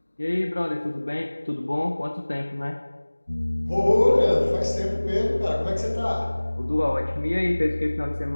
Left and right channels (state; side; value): inverted; both; correlation -1.00